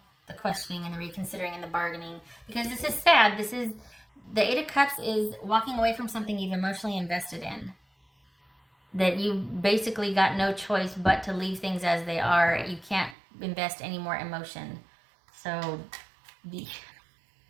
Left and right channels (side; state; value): left; drops out; at 13.2 s